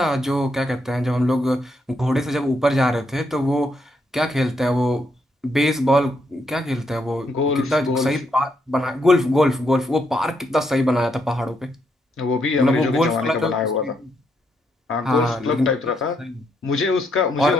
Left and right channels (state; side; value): normal; both; correlation 0.77